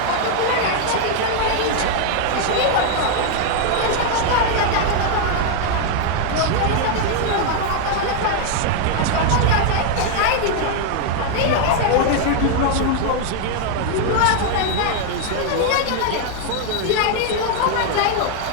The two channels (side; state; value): both; different; correlation 0.00